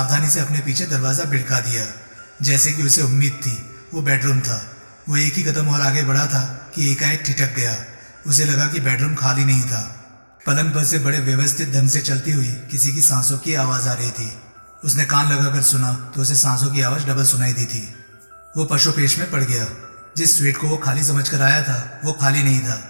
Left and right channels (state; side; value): inverted; both; correlation -1.00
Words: से अपने पीछे दरवाजा भिड़का दिया। जैसे कि उसे उम्मीद थी, वो बेडरूम था। वो एक ही कदम और आगे बढ़ा था कि एकाएक ठिठक गया। उसे लगा कि बेडरूम खाली नहीं था। पलंग पर से बड़े व्यवस्थित ढंग से चलती हुई किसी की सांसों की आवाज आ रही थी। उसने कान लगाकर सुना तो उसे सांसों की आवाज डबल सुनाई दी थी। वो पशुपेश में पड़ गया। जिस स्वीट को वो खाली समझकर आया था वो खाली नहीं था।